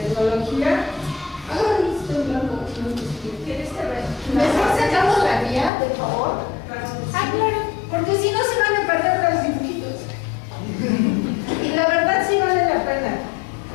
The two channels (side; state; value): right; drops out; at 5.7 s